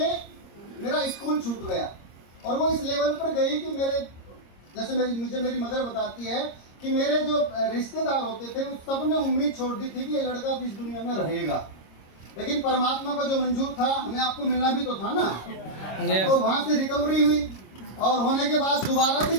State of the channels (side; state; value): right; late; 26 ms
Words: मेरा स्कूल छूट गया। और वो इस लेवल पर गई कि जैसे मेरी मदर बताती है कि मेरे जो रिश्तेदार होते थे उस सब ने उम्मीद छोड़ दी थी कि ये लड़का इस दुनिया में रहेगा। लेकिन परमात्मा को जो मंजूर था, हमें आपको मिलना भी तो था ना। yes. तो वहाँ से रिकवरी हुई और होने के बाद दोबारा से